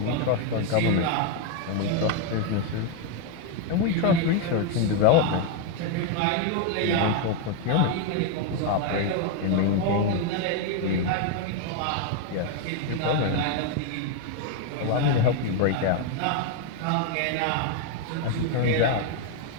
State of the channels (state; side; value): different; both; correlation 0.01